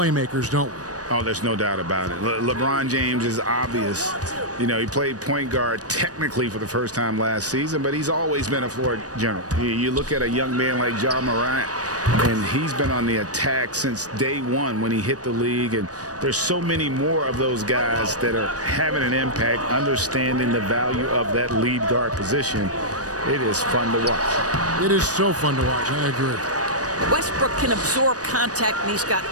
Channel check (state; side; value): late; left; 0.67 ms